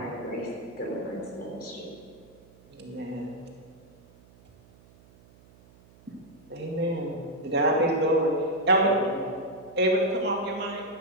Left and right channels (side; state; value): right; noise; hum, 26 dB below the sound